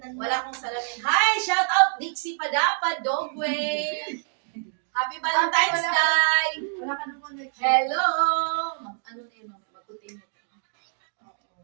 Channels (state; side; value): silent; left; 61 dB below the other